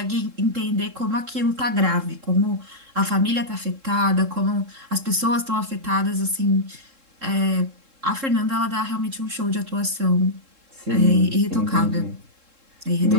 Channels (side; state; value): left; late; 3.7 ms